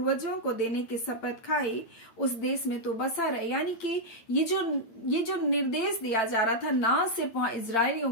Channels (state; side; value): late; right; 8.9 ms